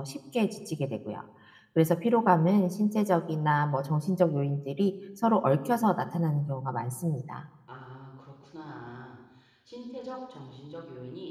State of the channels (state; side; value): identical; both; correlation 1.00